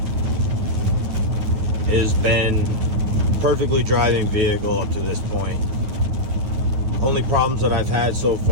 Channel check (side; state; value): left; late; 9.6 ms